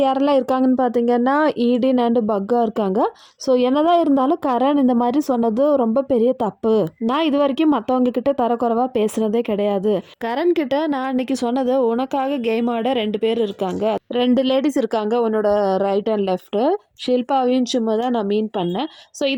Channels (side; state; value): both; identical; correlation 1.00